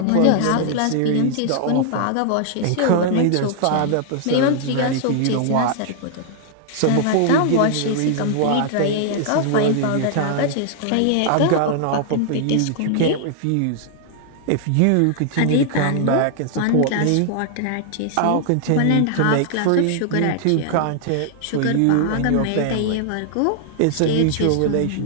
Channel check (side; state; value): both; different; correlation 0.00